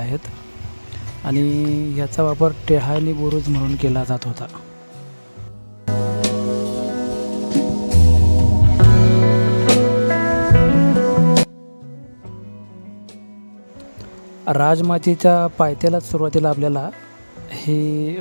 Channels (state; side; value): inverted; both; correlation -1.00